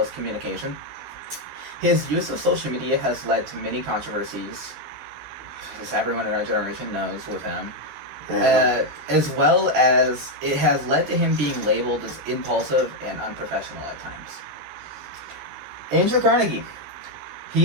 communication. His use of social media has led to many controversies, as everyone in our generation knows with him. As well as it has led to him being labeled as impulsive and unprofessional at times. Andrew Carnegie.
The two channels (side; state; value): left; late; 14 ms